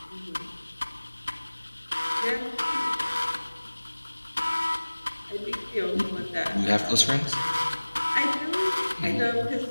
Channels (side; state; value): both; inverted; correlation -1.00